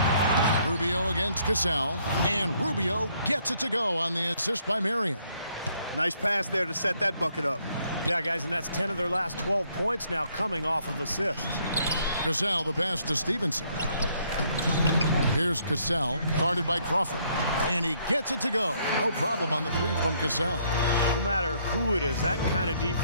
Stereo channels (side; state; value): both; inverted; correlation -0.68